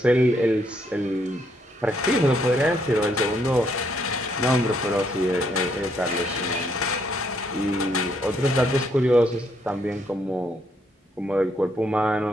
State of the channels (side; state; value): both; normal; correlation 0.72